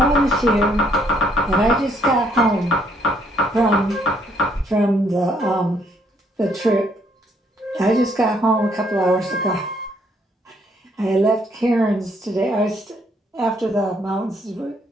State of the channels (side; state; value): both; normal; correlation 0.68